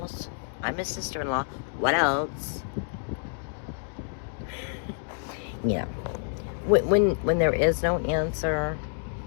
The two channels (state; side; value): silent; right; digital silence